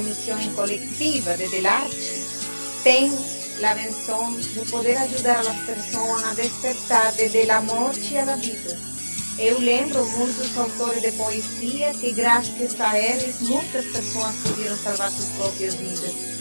missão coletiva desde a arte, têm a benção de poder ajudar as pessoas a despertar desde a morte à vida. Eu lembro muitos autores de poesia que, graças a eles, muitas pessoas puderam salvar suas próprias vidas.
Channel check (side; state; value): both; inverted; correlation -1.00